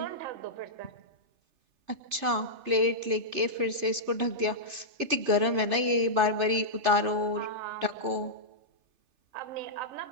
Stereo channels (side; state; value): left; late; 3.4 ms